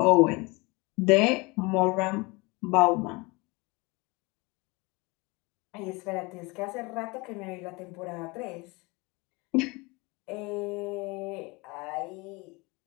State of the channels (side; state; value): right; quieter; 25.6 dB